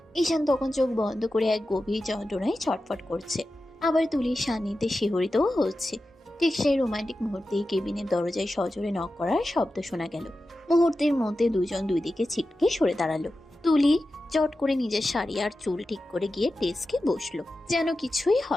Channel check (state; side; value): normal; both; correlation 0.93